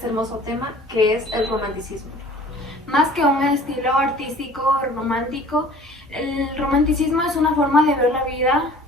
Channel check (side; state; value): both; normal; correlation 0.49